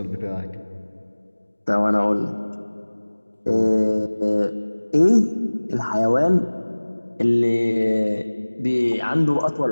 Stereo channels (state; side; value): inverted; both; correlation -1.00